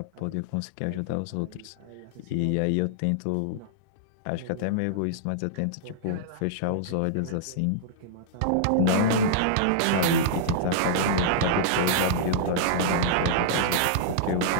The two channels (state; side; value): different; both; correlation -0.02